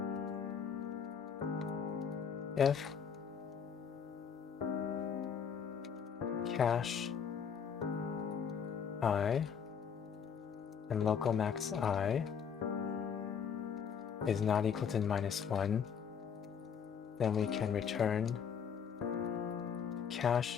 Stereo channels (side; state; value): right; quieter; 7.2 dB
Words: If cache I and local max I is not equal to -1, then we can return